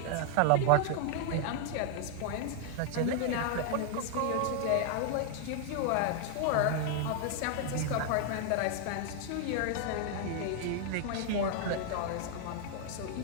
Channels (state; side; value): different; both; correlation 0.00